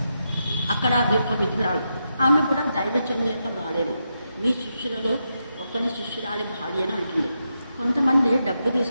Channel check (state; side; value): inverted; both; correlation -0.85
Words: అక్కడ ఒక విధురాలు, ఆమె కూడా దైవజనుని యొక్క భార్యనే. మీ శిష్యులలో ఒకని శిష్యురాలి భార్య అని అంటుంది. కొంతమంది డబ్బు